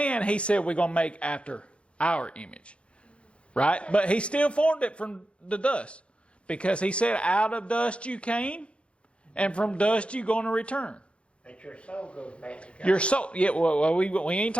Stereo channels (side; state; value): right; late; 0.059 ms